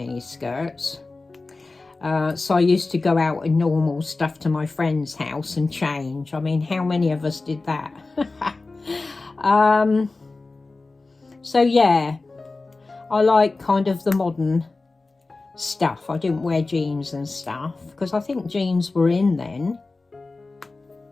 skirts. So I used to go out in normal stuff to my friend's house and change. I mean, how many of us did that? So yeah, I like kind of the modern stuff. I didn't wear jeans and stuff because I think jeans were in then.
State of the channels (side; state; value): right; quieter; 3.5 dB